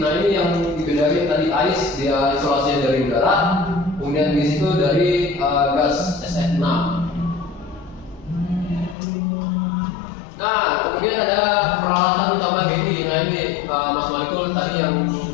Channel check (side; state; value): right; drops out; at 9.0 s